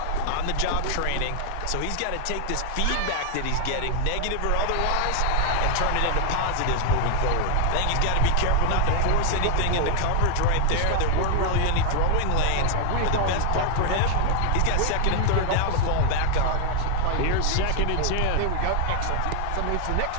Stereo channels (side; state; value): both; different; correlation 0.00